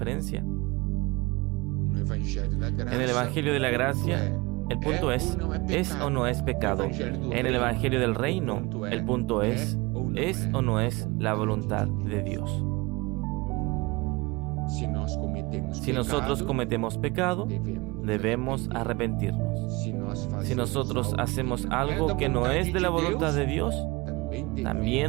En el Evangelio de la Gracia, el punto ¿es o no es pecado? En el Evangelio del Reino, el punto ¿es o no es la voluntad de Dios? Si nosotros cometemos pecado, debemos arrepentirnos. Si nosotros hacemos algo que no es de la voluntad de Dios,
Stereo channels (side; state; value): left; quieter; 24.4 dB